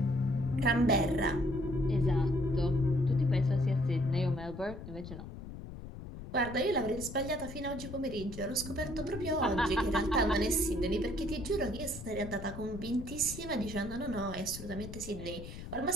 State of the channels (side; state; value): left; noise; rumble, 11 dB below the sound